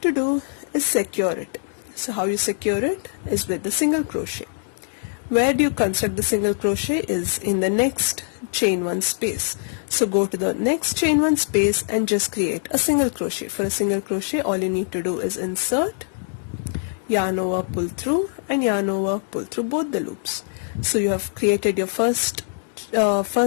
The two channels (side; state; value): right; silent; digital silence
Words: to do is secure it. So how you secure it is with the single crochet. Where do you construct the single crochet is in the next chain 1 space. So go to the next chain 1 space and just create a single crochet. For a single crochet, all you need to do is insert, yarn over, pull through, and yarn over, pull through both the loops. So you have created your first